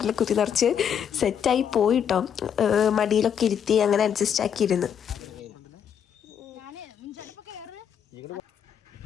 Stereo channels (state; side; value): quieter; right; 8.3 dB